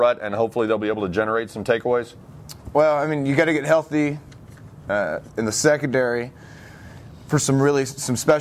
and hopefully they'll be able to generate some takeaways? Well, I mean, you got to get healthy in the secondary. for some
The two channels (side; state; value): both; identical; correlation 1.00